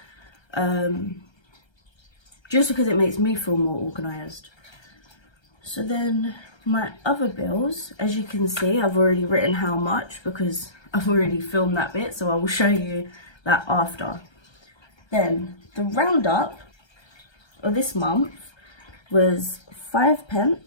Just because it makes me feel more organised. So then my other bills, as you can see, I've already written how much because I've already filmed that bit, so I will show you that after. Then the roundup of this month was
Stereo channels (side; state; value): right; late; 1.3 ms